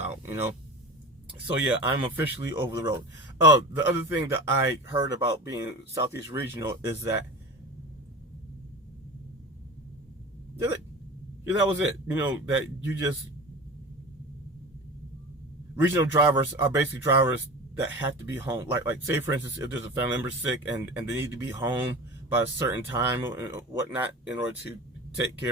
you know. So yeah, I'm officially over the road. The other thing that I heard about being Southeast Regional is that, yeah, that was it. You know, that you just, regional drivers are basically drivers that have to be home. Like say for instance, if there's a family member sick and they need to be home by a certain time or whatnot in order to take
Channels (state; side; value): normal; both; correlation 0.33